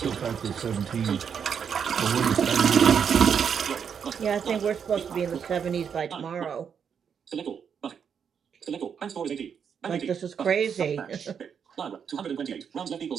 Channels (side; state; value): left; quieter; 7.3 dB